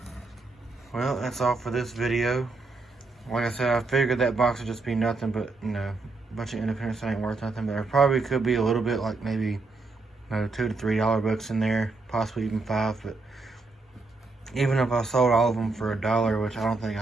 Well, that's all for this video. Like I said, I figured that box would just be nothing but, you know, a bunch of independents that ain't worth nothing. But there probably could be a little bit, like maybe, you know, $2 to $3 books in there, possibly even $5. But even if I sold all of them for $1, which I don't think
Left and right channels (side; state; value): left; quieter; 3.6 dB